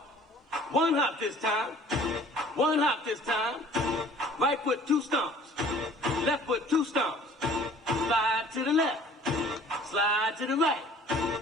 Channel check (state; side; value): normal; both; correlation 0.51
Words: 1 hop this time. 1 hop this time. Right foot, 2 stomps. Left foot, 2 stomps. Slide to the left. Slide to the right.